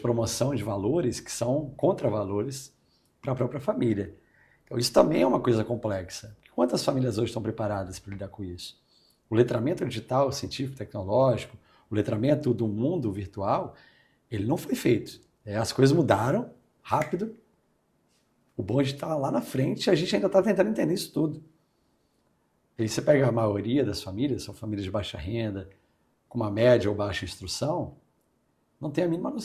promoção de valores que são contravalores para a própria família. Então, isso também é uma coisa complexa. Quantas famílias hoje estão preparadas para lidar com isso? O letramento digital, científico, tecnológico, o letramento do mundo virtual, ele não foi feito. As coisas mudaram rápido, o bonde está lá na frente e a gente ainda está tentando entender isso tudo. E aí você pega a maioria das famílias, são famílias de baixa renda, com uma média ou baixa instrução, não tem a mínima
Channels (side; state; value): both; identical; correlation 1.00